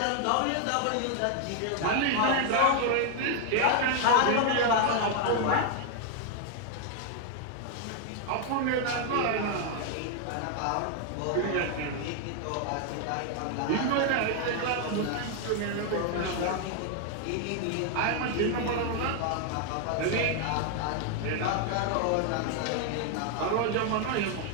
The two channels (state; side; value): different; both; correlation 0.00